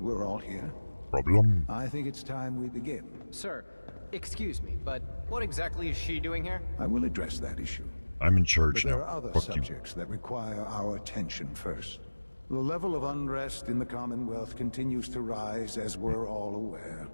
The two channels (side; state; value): both; inverted; correlation -1.00